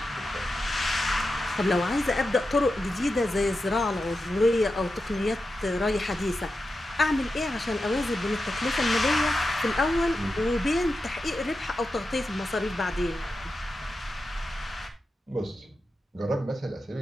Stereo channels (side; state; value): both; normal; correlation 0.90